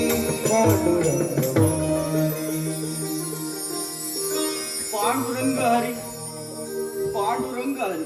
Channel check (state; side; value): identical; both; correlation 1.00